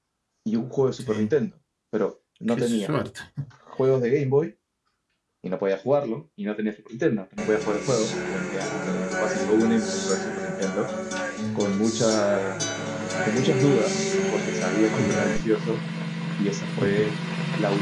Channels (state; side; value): identical; both; correlation 1.00